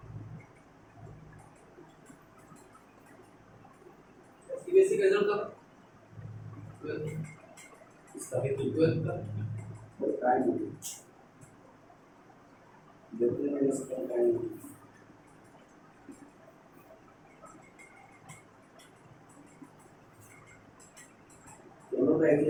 बेसिक रिजल्ट का इसका भी 12 का टाइम देखते हैं इसका टाइम, दोनों का एक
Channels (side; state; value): both; identical; correlation 1.00